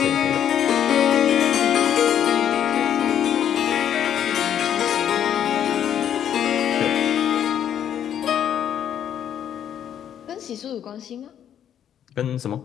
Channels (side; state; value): right; quieter; 9.7 dB